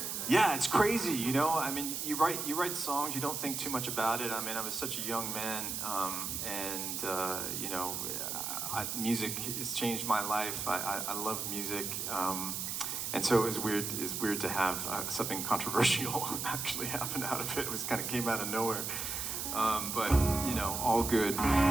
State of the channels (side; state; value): right; noise; hiss, 3 dB below the sound